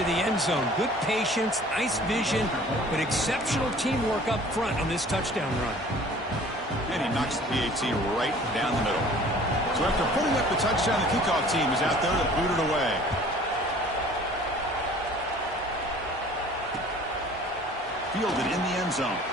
the end zone. Good patience, nice vision, but exceptional teamwork up front on this touchdown run. And he knocks the PAT right down the middle. So after putting up the touchdown, the kickoff team is out there to boot it away. Fielded in the end zone.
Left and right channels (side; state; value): both; normal; correlation 0.49